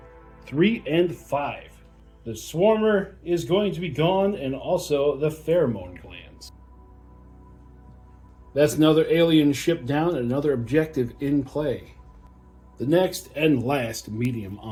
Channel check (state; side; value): identical; both; correlation 1.00